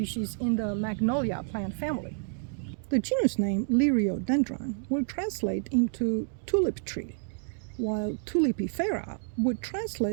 in the Magnolia plant family. The genus name Liriodendron will translate into tulip tree, while tulipifera would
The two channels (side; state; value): left; silent; 56 dB below the other